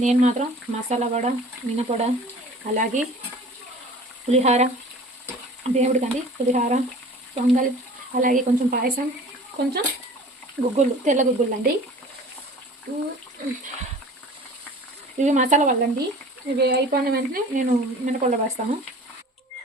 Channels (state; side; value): normal; both; correlation 0.44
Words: నేను మాత్రం మసాలా వడ, మినపొడ, అలాగే పులిహార, దేవుడికండి పులిహార, పొంగల్, అలాగే కొంచెం పాయసం, కొంచెం గుగ్గులు, తెల్ల గుగ్గులు అండి. ఇవి మసాలా వల్లండి. ఇవి అయిపోయిన వెంటనే నేను మినపొడ వేస్తాను.